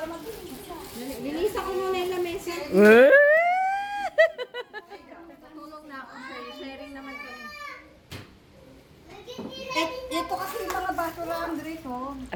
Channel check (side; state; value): both; identical; correlation 1.00